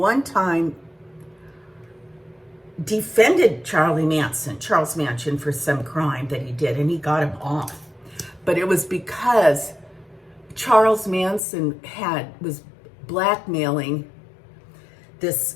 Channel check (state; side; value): drops out; right; at 11.4 s